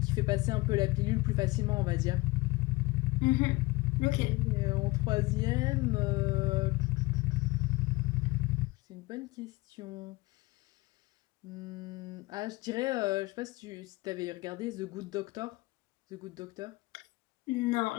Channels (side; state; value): right; quieter; 21.8 dB